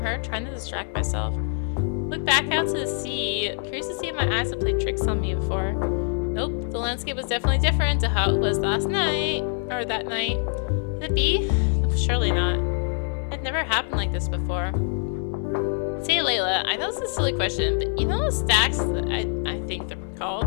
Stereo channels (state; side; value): silent; right; 55 dB below the other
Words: her, trying to distract myself. Looked back out to the sea, curious to see if my eyes had played tricks on me before. Nope, the landscape was definitely different to how it was that night. Could it be? Surely not. It never happened like this before. Say, Layla, I know it's a silly question, but you know those stacks that I think they're